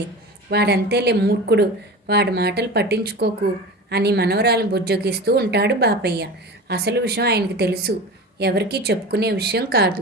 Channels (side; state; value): both; normal; correlation 0.32